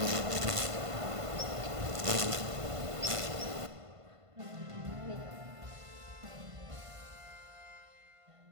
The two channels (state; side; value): late; left; 1.5 ms